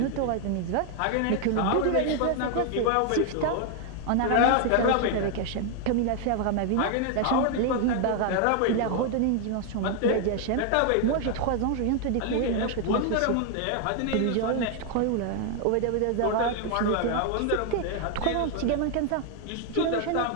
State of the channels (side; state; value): both; different; correlation 0.00